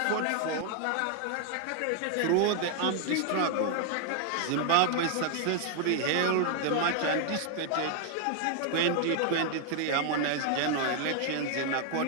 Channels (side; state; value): both; different; correlation 0.00